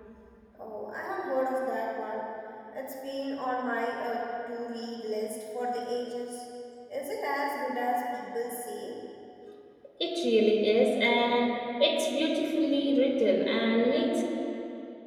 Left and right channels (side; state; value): both; identical; correlation 1.00